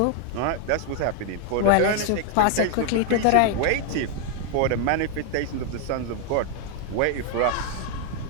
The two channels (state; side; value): different; both; correlation 0.00